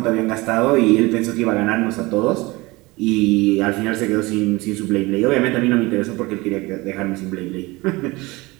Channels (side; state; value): left; quieter; 22.5 dB